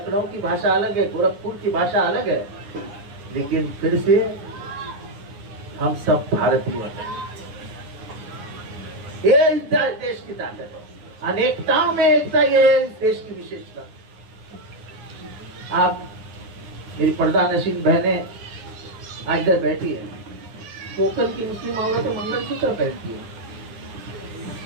की भाषा अलग है, गोरखपुर की भाषा अलग है, लेकिन फिर से हम सब भारतीय हैं। ये इस देश की ताकत है, अनेकताओं में एकता, ये है इस देश की विशेषता। आप मेरी पर्दा नशीन बहनें आज इधर बैठी है, कोकन की मुस्लिम औरतें मंगलसूत्र पहनती है,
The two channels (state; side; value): late; left; 9.8 ms